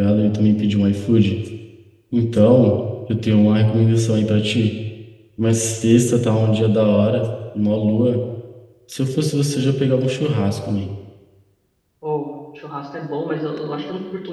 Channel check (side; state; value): both; identical; correlation 1.00